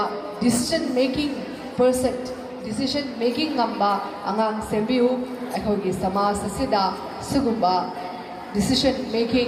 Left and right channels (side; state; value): both; identical; correlation 1.00